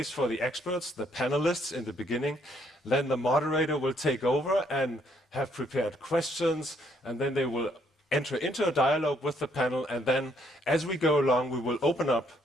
for the experts, the panelists in the beginning. Then the moderator will take over and have prepared questions, and then they will enter into a dialogue with the panel. And then as we go along, we will open up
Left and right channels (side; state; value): both; normal; correlation 0.69